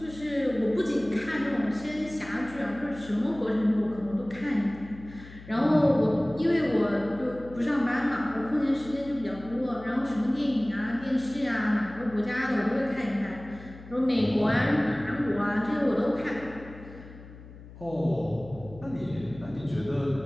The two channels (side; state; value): left; noise; hum, 17 dB below the sound